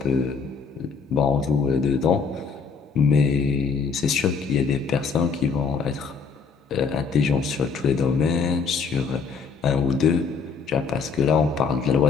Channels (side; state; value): right; quieter; 5.4 dB